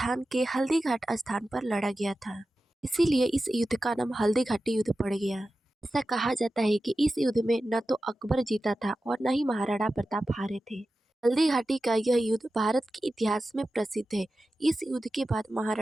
के हल्दी घाट स्थान पर लड़ा गया था, इसीलिए इस युद्ध का नाम हल्दी घाटी युद्ध पड़ गया। ऐसा कहा जाता है कि इस युद्ध में न तो अकबर जीता था और न ही महाराणा प्रताप हारे थे। हल्दी घाटी का यह युद्ध भारत के इतिहास में प्रसिद्ध है। इस युद्ध के बाद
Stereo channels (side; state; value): both; normal; correlation 0.93